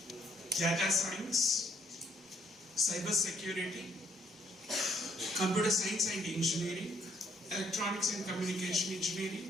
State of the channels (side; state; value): both; normal; correlation 0.68